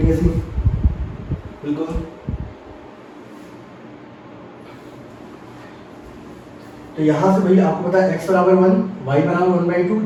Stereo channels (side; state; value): both; identical; correlation 1.00